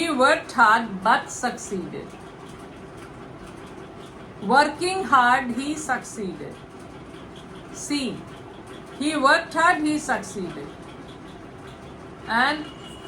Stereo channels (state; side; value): identical; both; correlation 1.00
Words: worked hard but succeeded. Working hard, he succeeded. C. He worked hard, he succeeded. And